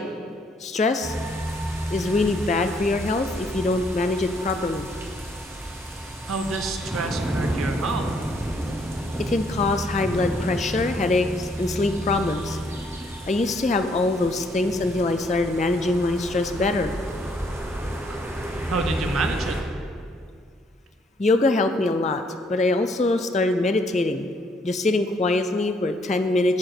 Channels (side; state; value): both; normal; correlation 0.68